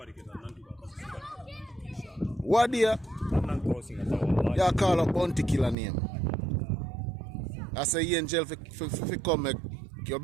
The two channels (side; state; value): left; drops out; at 5.8 s